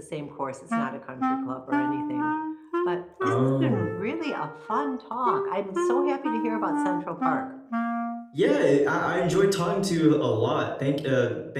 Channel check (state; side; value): identical; both; correlation 1.00